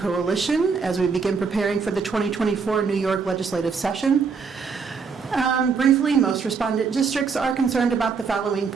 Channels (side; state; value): left; quieter; 5.4 dB